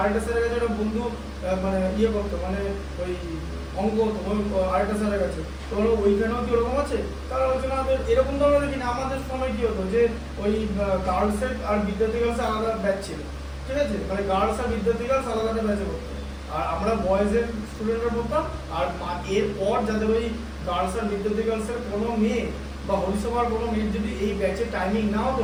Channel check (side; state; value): both; identical; correlation 1.00